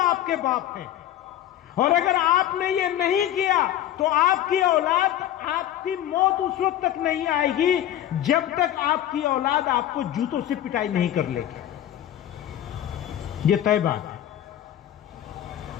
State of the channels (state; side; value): quieter; right; 12.0 dB